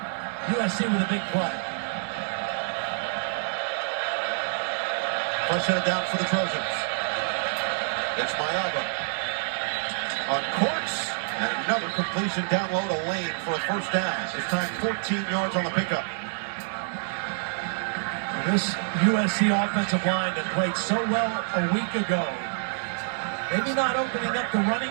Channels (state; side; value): silent; left; digital silence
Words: USC with a big play. First headed down for the Trojans. It's Mayava on course, and another completion down low to Lane for a first down. This time 14 yards on the pickup. This USC offensive line that played so well a week ago, maybe not opening up the running